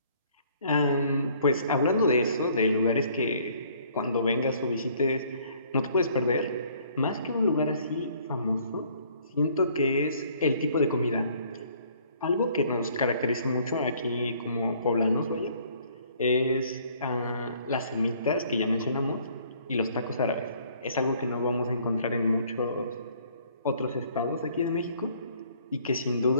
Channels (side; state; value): both; inverted; correlation -0.60